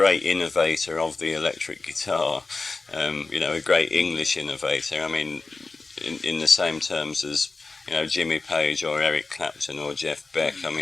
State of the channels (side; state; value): right; quieter; 3.8 dB